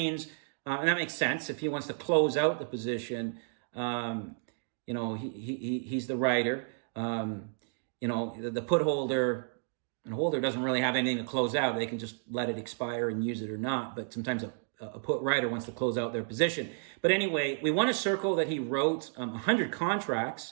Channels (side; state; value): left; silent; digital silence